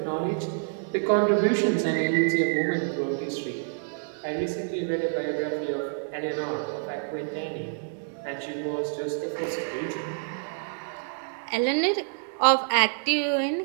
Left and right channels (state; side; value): silent; left; digital silence